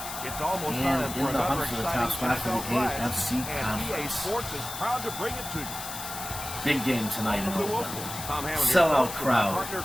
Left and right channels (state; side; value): noise; left; hiss, 8 dB below the sound